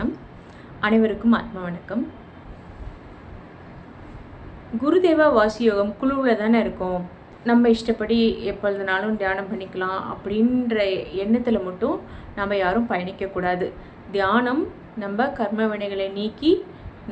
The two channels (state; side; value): identical; both; correlation 1.00